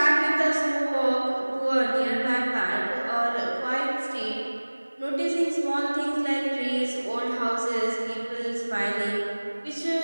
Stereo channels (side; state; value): both; inverted; correlation -1.00